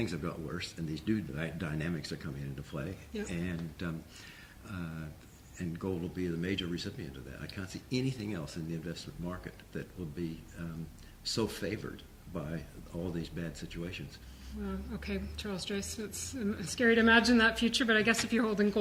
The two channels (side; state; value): both; identical; correlation 1.00